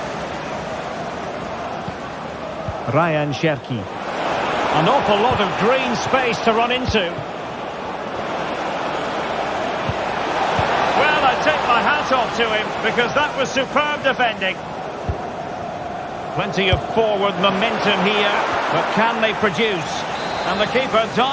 Ryan Cherki. An awful lot of green space to run into. Well, I take my hat off to him because that was superb defending. Plenty of forward momentum here, but can they produce? And the keeper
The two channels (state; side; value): identical; both; correlation 1.00